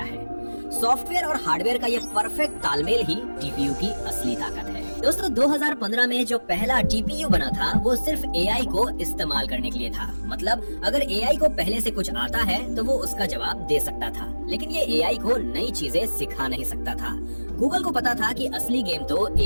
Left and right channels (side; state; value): both; inverted; correlation -1.00